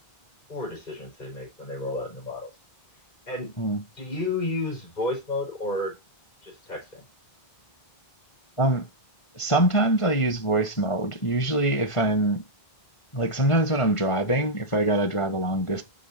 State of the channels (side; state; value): right; late; 1.5 ms